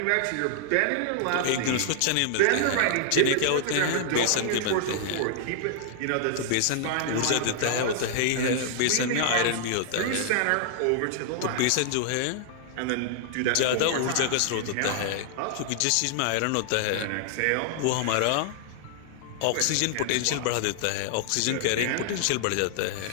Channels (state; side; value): different; both; correlation -0.01